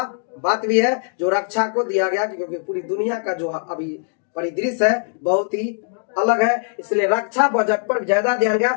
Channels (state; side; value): silent; right; digital silence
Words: बात भी है जो रक्षा को दिया गया, क्योंकि पूरी दुनिया का जो अभी परिदृश्य है बहुत ही अलग है, इसलिए रक्षा बजट पर ज्यादा ध्यान